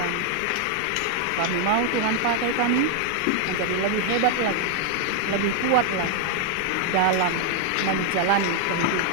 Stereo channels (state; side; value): different; both; correlation 0.00